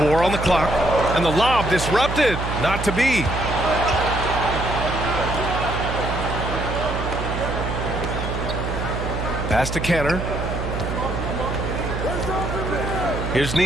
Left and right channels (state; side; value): noise; right; hum, 4 dB below the sound